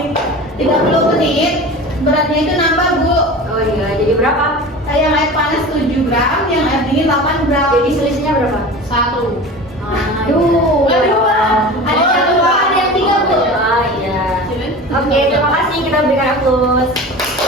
30 menit, beratnya itu nambah Bu. Oh iya, jadi berapa? Yang air panas 7 gram, yang air dingin 8 gram. Jadi selisihnya berapa? 1. Aduh. Ada dua. Ada yang dua, ada yang 3 Bu. Oh iya. Oke, terima kasih, kita berikan aplaus.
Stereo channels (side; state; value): both; normal; correlation 0.34